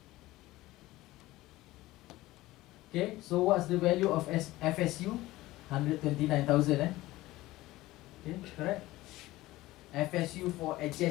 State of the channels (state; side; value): quieter; right; 17.8 dB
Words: Okay, so what's the value of FSU? 129,000, Okay, correct? FSU for